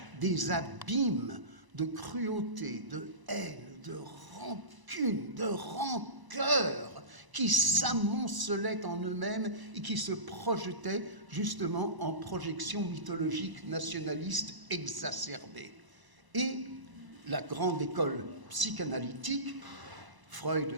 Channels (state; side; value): late; left; 1.0 ms